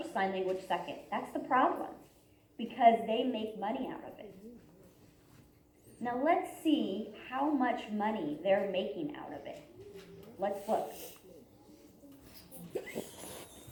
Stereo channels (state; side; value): identical; both; correlation 1.00